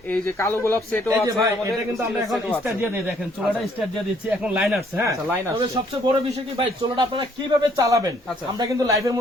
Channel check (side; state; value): both; normal; correlation 0.65